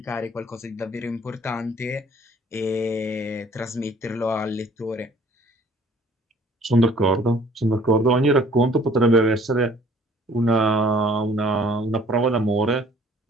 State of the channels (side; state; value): both; normal; correlation 0.55